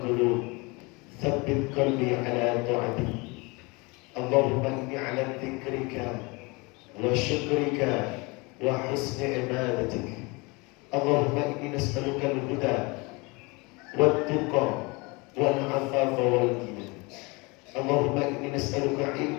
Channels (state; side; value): quieter; right; 26.8 dB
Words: ثبت قلبي على طاعتك. اللهم إني على ذكرك وشكرك وحسن عبادتك. اللهم إني نسألك الهدى والتقى والعفاف والغنى. اللهم إني نسألك